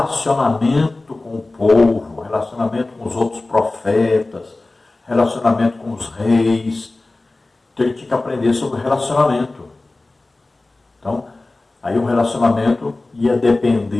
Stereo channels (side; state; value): right; quieter; 3.1 dB